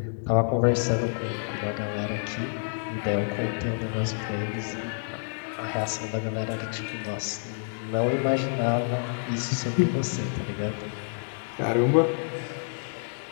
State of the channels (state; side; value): silent; right; digital silence